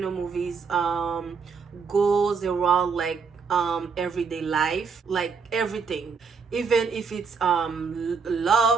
movies goes around like everyday life, like everything, even if it's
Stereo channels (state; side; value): quieter; left; 5.5 dB